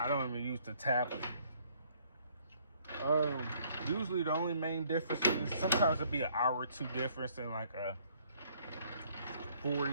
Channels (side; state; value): both; inverted; correlation -0.63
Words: don't even use the tablet. Usually the only main difference is sometimes it'll be an hour or two difference in like a